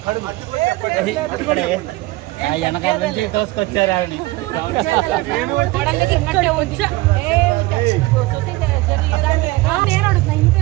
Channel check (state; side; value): quieter; left; 20.4 dB